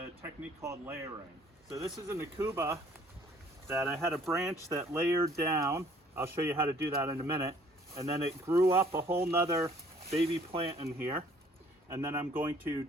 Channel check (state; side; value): normal; both; correlation 0.58